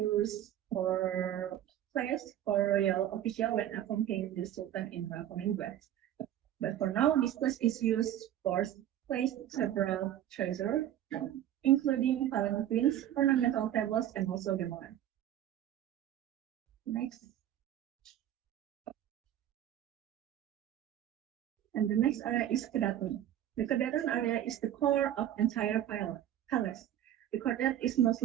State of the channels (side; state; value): left; quieter; 11.6 dB